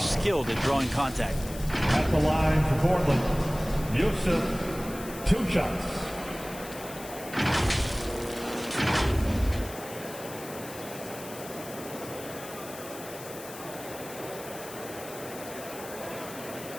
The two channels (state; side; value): noise; left; hiss, 14 dB below the sound